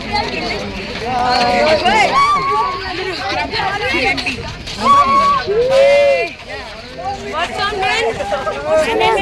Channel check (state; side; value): identical; both; correlation 1.00